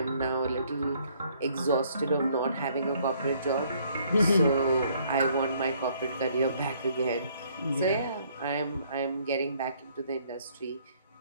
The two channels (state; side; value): inverted; both; correlation -0.64